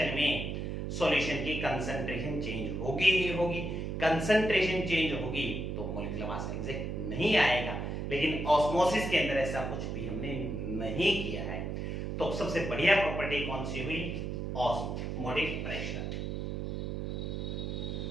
में सॉल्यूशन की कंसंट्रेशन चेंज होगी ही होगी। कंसंट्रेशन चेंज होगी तो मॉलिक्यूलर मास एग्जैक्ट नहीं आएगा, लेकिन ऑस्मोसिस के अंदर ऐसा कुछ भी हमने नहीं किया है। तो सबसे बढ़िया प्रॉपर्टी कौन सी हुई, osmotic pressure.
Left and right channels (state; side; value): noise; right; hum, 3 dB below the sound